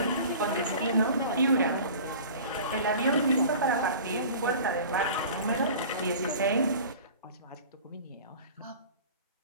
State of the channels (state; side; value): inverted; both; correlation -0.41